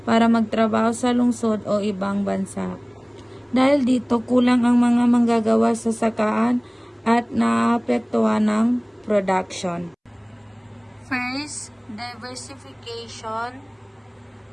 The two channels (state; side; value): identical; both; correlation 1.00